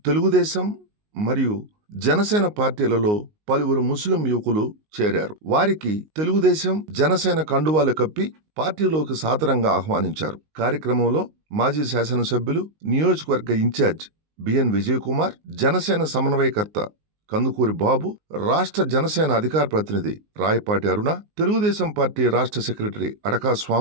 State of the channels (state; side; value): late; left; 19 ms